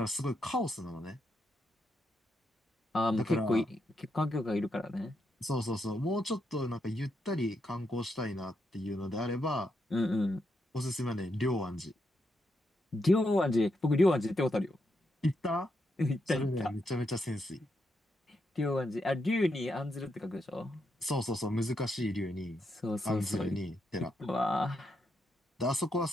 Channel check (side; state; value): both; normal; correlation 0.81